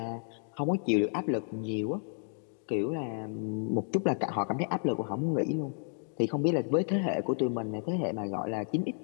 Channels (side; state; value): right; silent; 57 dB below the other